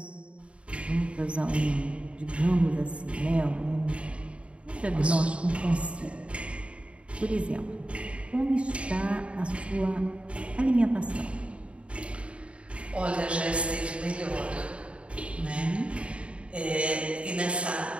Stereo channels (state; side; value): late; left; 0.060 ms